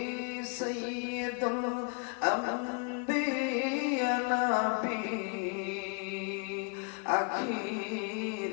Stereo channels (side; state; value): right; quieter; 34.9 dB